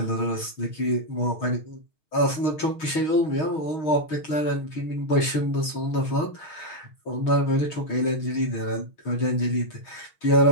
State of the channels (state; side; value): late; right; 6.4 ms